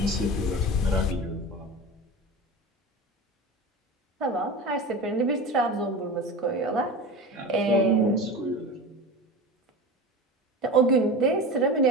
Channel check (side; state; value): both; normal; correlation 0.30